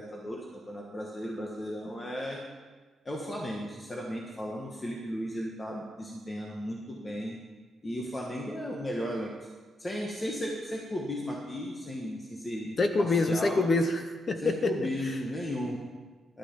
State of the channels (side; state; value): both; normal; correlation 0.82